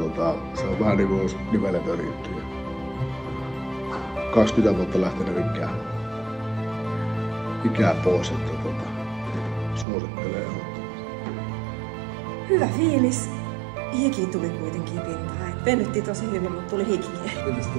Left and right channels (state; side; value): drops out; left; at 9.9 s